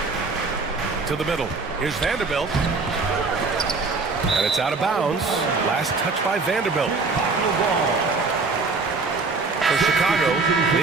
To the middle. Here's Vanderbilt. And it's out of bounds. Last touch by Vanderbilt. For Chicago,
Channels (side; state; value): left; quieter; 4.1 dB